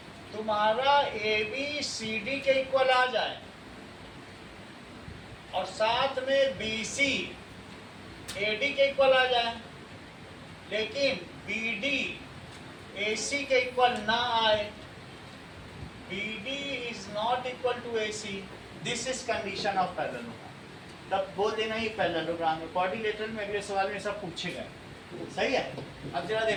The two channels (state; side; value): identical; both; correlation 1.00